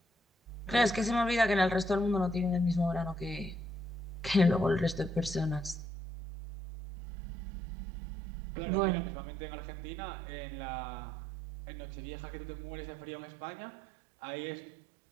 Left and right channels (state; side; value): drops out; left; at 5.8 s